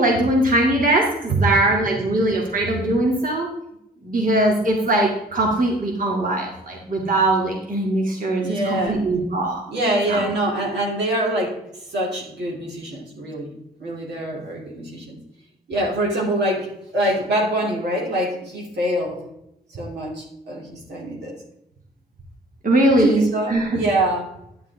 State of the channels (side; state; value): both; normal; correlation 0.47